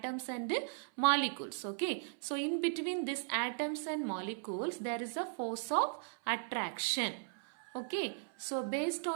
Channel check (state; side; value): silent; left; 53 dB below the other